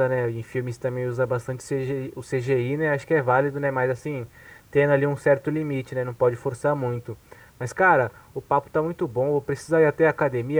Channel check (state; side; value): identical; both; correlation 1.00